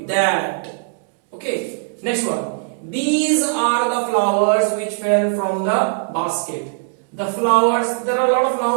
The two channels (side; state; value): left; silent; 66 dB below the other